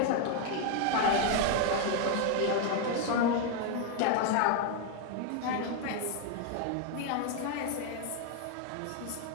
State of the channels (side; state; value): both; different; correlation 0.01